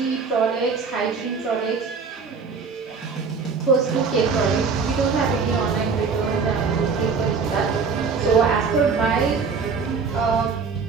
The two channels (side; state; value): left; quieter; 5.2 dB